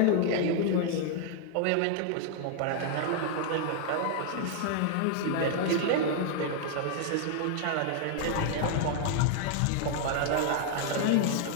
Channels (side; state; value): both; different; correlation 0.00